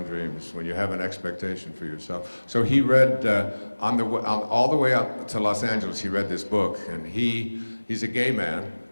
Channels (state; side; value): inverted; both; correlation -1.00